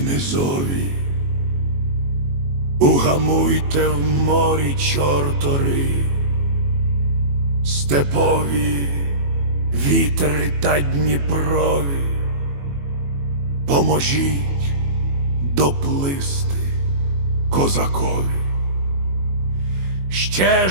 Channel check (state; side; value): late; left; 21 ms